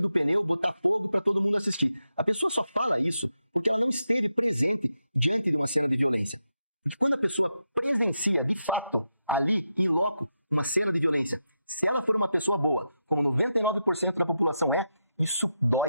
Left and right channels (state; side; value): inverted; both; correlation -0.86